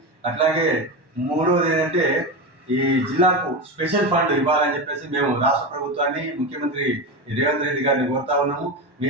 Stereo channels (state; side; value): late; left; 1.1 ms